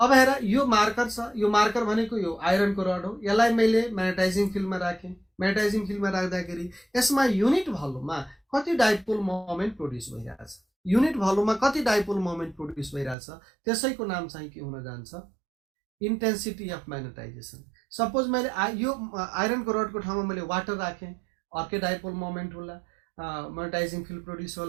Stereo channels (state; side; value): drops out; left; at 13.2 s